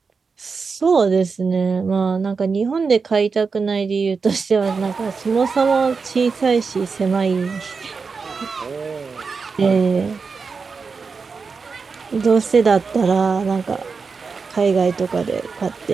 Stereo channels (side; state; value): left; quieter; 5.0 dB